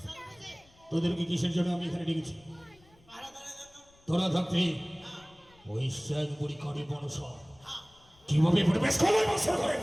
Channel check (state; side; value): noise; left; rumble, 29 dB below the sound